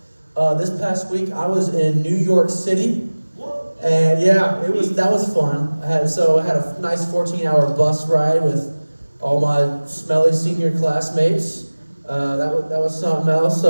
This past week I was in New York City, and yeah, that was fun. I had a nice 14-hour bus ride with all my smelly senior classmates. That was something else.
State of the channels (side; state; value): both; inverted; correlation -1.00